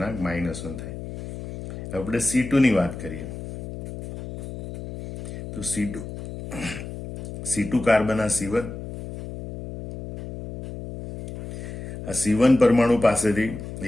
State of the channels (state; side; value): noise; left; hum, 9 dB below the sound